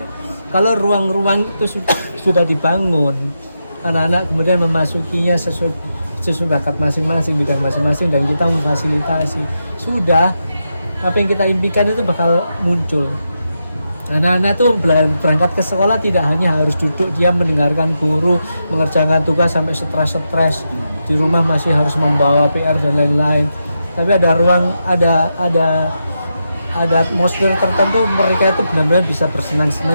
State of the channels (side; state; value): both; inverted; correlation -0.86